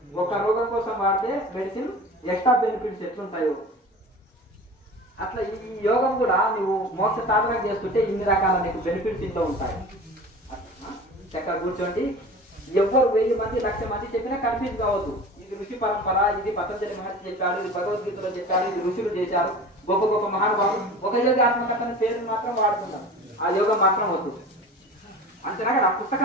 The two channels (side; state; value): both; normal; correlation 0.37